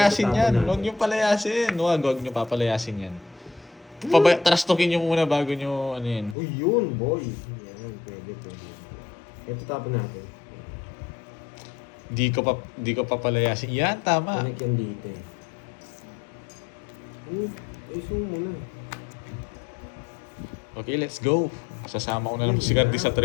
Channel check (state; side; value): drops out; right; at 6.4 s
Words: yan. Huwag niyo palayasin. Huwag niyo papalayasin yan. Trastokin niyo muna bago niyo, ano yan. Uy, yun, boy. Yan, pwede. Ito tapon natin. Di ko papalayasin. Yan, tama. Connect yan dito eh. Ay, zoom mo na. Okay, let's go. Sasama ko na lang si Karting sa